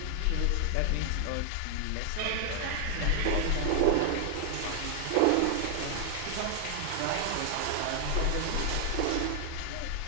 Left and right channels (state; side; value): different; both; correlation 0.00